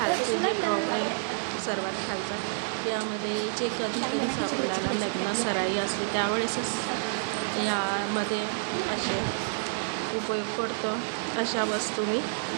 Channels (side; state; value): left; silent; digital silence